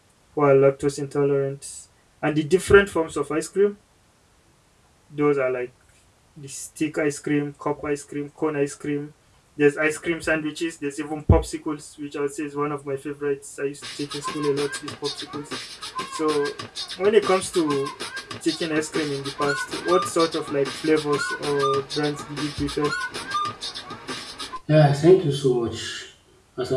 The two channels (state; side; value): identical; both; correlation 1.00